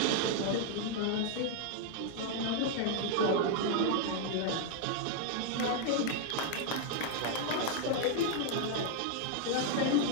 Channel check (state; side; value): different; both; correlation 0.00